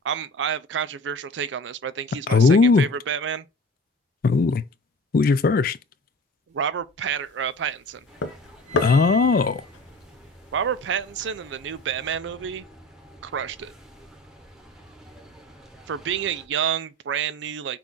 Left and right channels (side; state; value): both; normal; correlation 0.40